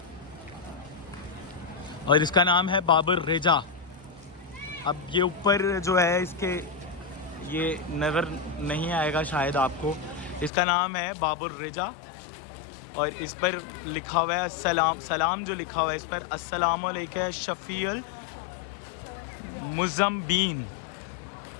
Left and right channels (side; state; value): right; drops out; at 10.5 s